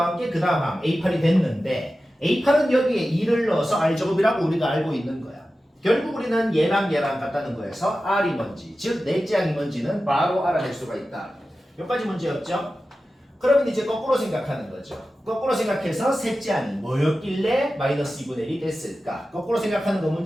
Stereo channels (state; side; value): normal; both; correlation 0.94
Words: 게 그 다음 항 A8이 됐는데 A8은 여기에 2를 넣어서 R제곱이라고 우리가 알고 있는 거야. 결국 우리는 얘랑 같다는 거에서 R이 뭔지 즉 넷째 항이 뭔지는 바로 알아낼 수가 있다. 여기까지 문제였죠? 그러면 이제 거꾸로 생각하는 거죠. 거꾸로 생각해서 셋째 항이 뭐였길래 마이너스 2분의 1이 됐을까? 거꾸로 생각하는 거